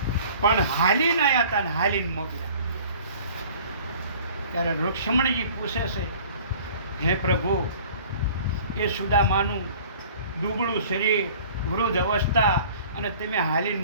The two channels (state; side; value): inverted; both; correlation -0.48